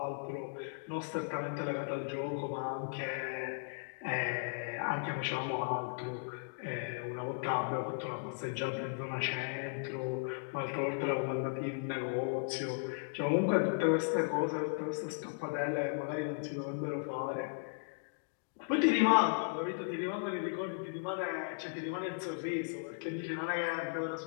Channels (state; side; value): silent; right; digital silence